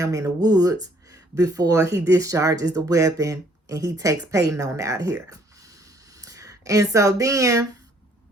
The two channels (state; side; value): normal; both; correlation 0.63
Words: in the woods before he discharges the weapon and he takes Peyton on out here. And so then